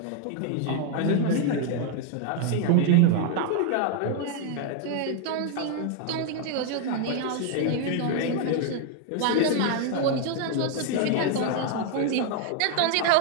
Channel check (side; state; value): both; different; correlation 0.00